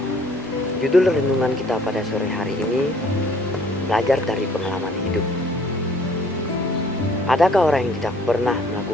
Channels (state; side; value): normal; both; correlation 0.58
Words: Judul renungan kita pada sore hari ini, belajar dari pengalaman hidup. Adakah orang yang tidak pernah